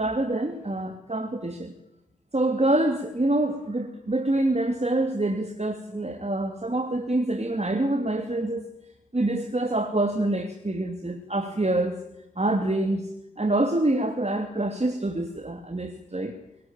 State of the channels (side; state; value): both; normal; correlation 0.67